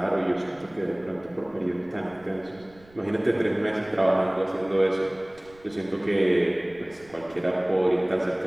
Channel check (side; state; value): right; noise; rumble, 27 dB below the sound